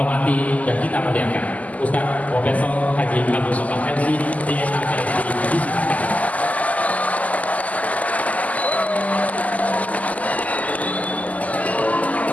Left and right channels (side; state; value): right; late; 0.074 ms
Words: dan kita muliakan. Ustaz Profesor Haji Abdul Somad MC DSA KSI.